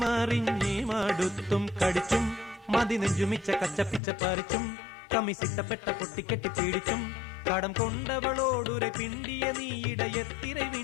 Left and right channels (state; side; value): drops out; right; at 4.0 s